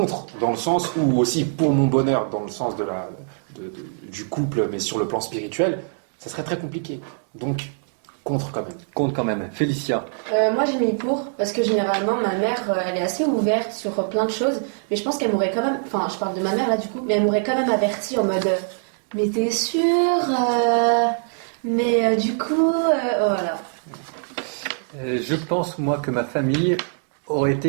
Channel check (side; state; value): left; silent; 63 dB below the other